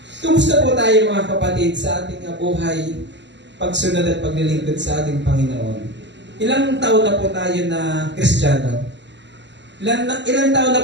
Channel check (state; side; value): late; left; 0.52 ms